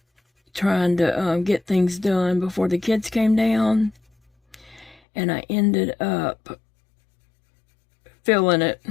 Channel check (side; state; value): right; drops out; at 5.0 s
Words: trying to get things done before the kids came down, and I ended up feeling it.